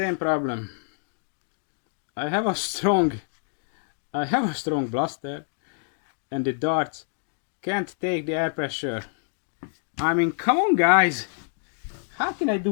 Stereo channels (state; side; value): silent; right; digital silence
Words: problem. I have a strong blaster, and the darts can't take the air pressure. I mean, come on guys, how can I